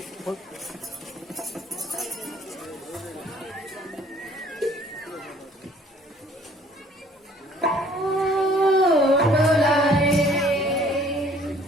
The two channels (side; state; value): both; normal; correlation 0.57